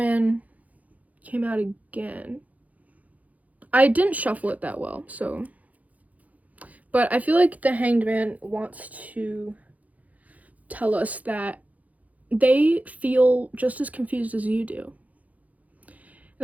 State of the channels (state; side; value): late; left; 0.074 ms